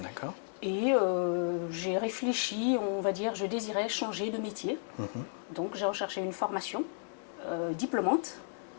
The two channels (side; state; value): right; silent; digital silence